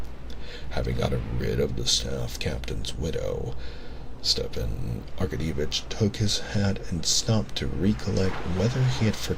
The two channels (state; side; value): identical; both; correlation 1.00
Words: Having gotten rid of the staff captain's widow, Stepan Arkadyevitch took his hat and stopped to recollect whether he had